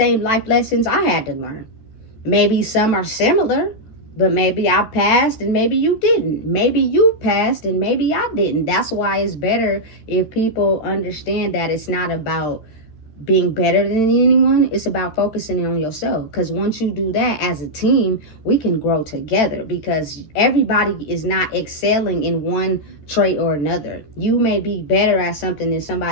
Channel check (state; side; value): late; right; 13 ms